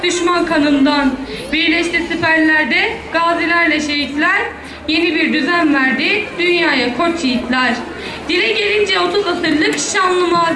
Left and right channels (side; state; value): both; identical; correlation 1.00